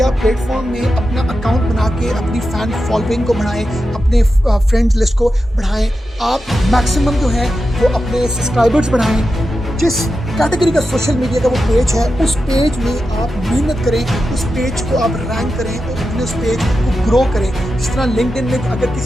प्लेटफॉर्म में अपना अकाउंट बना के अपनी फैन फॉलोइंग को बढ़ाएं, अपने फ्रेंड्स लिस्ट को बढ़ाएं। आप मैक्सिमम जो है वो अपने सब्सक्राइबर्स बढ़ाएं। जिस कैटेगरी का सोशल मीडिया का वो पेज है उस पेज में आप मेहनत करें, उस पेज को आप रैंक करें और अपने उस पेज को ग्रो करें। जिस तरह लिंक्डइन में अगर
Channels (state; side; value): normal; both; correlation 0.90